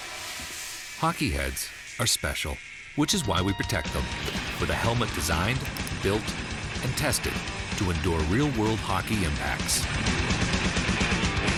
Hockey heads are special, which is why we protect them with a helmet designed, built, and tested to endure real-world hockey impacts.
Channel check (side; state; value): both; identical; correlation 1.00